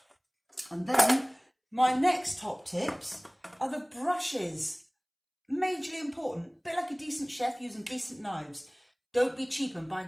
And then my next top tips are the brushes. Majorly important, a bit like a decent chef using decent knives. Don't be cheap and buy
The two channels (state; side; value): identical; both; correlation 1.00